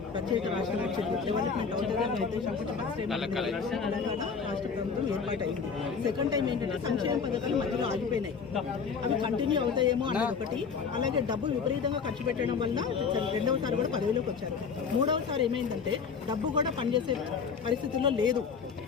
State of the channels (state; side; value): quieter; right; 5.8 dB